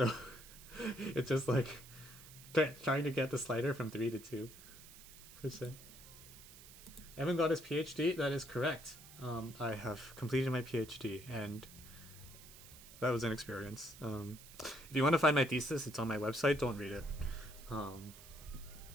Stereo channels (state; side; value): noise; right; hiss, 18 dB below the sound